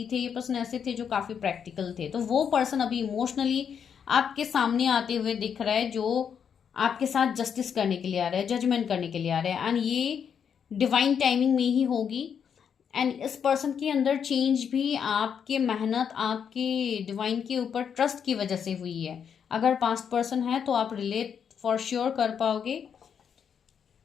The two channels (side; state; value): right; quieter; 7.5 dB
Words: थे। ये पर्सन ऐसे थे जो काफ़ी प्रैक्टिकल थे। तो वो पर्सन अभी इमोशनली आपके सामने आते हुए दिख रहा है, जो आपके साथ जस्टिस करने के लिए आ रहा है, जजमेंट करने के लिए आ रहा है, एंड ये डिवाइन टाइमिंग में ही होगी। एंड इस पर्सन के अंदर चेंज भी आपके मेहनत, आपके डिवाइन के ऊपर ट्रस्ट की वजह से हुई है। अगर पास्ट पर्सन है तो आप रिलेट फॉर श्योर कर पाओगे।